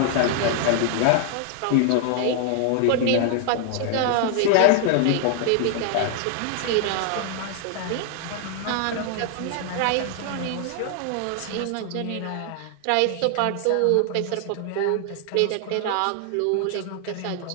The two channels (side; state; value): both; different; correlation 0.00